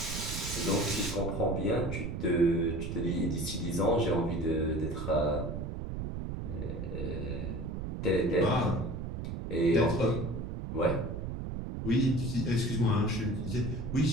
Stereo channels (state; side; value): noise; right; rumble, 5 dB below the sound